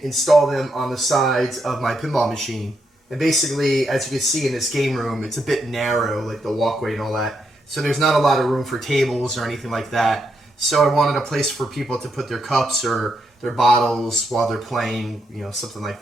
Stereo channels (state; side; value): normal; both; correlation 0.80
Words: install them on the sides of my pinball machine. And basically, as you can see in this game room, it's a bit narrow, like the walkway and all that. So there's not a lot of room for tables or anything like that. So I wanted a place for people to put their cups or their bottles while they're playing, something like